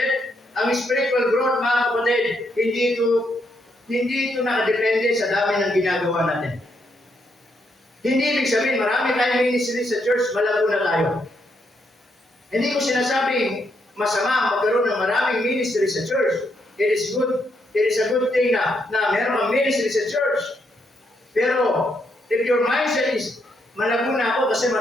Ang spiritual growth mga kapatid, hindi ito nakadepende sa dami ng ginagawa natin. Hindi ibig sabihin, marami tayong ministry sa church, malago na tayo. Hindi ko sinasabing masama magkaroon ng maraming ministry sa church. It is good. It is a good thing na meron kang ministry sa church. Pero, if your mindset is, malago na ako kasi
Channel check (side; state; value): both; normal; correlation 0.77